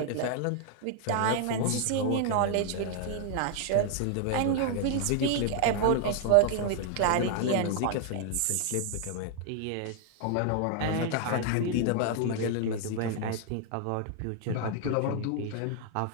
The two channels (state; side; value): different; both; correlation 0.00